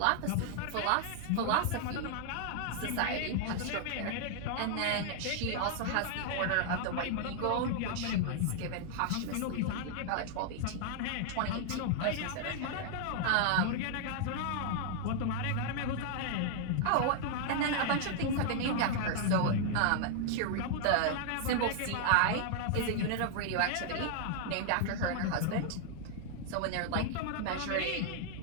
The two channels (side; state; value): both; different; correlation 0.00